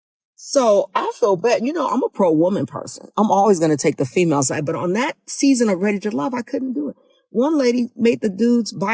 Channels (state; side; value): identical; both; correlation 1.00